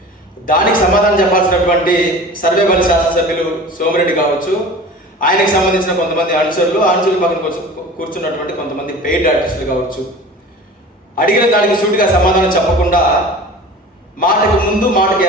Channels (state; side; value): normal; both; correlation 0.38